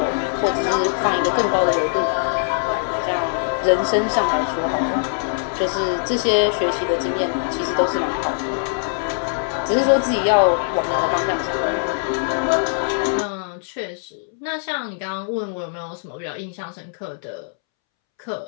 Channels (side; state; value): right; silent; 64 dB below the other